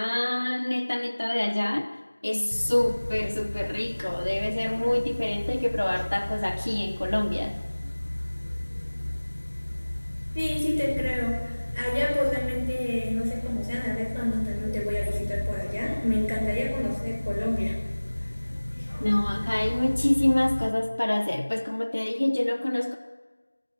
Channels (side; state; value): both; inverted; correlation -1.00